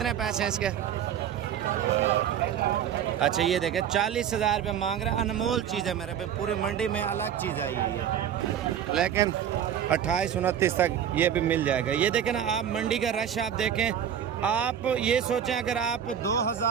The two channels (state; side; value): quieter; left; 9.2 dB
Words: पैसे हैं इसके? अच्छा ये देखें 40,000 रुपये मांग रहे हैं, अनमोल चीज़ है मेरे भाई, पूरी मंडी में अलग चीज़ आई है ये, लेकिन 28-29 तक ये भी मिल जाएगा। ये देखें ना आप, मंडी का रश आप देखें, आप ये सोचें अगर आप